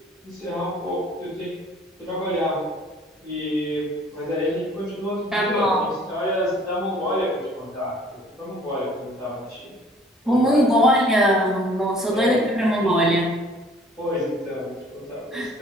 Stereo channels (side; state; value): both; normal; correlation 0.54